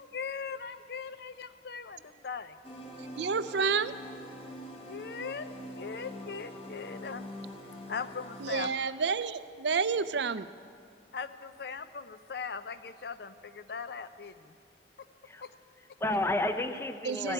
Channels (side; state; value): both; normal; correlation 0.01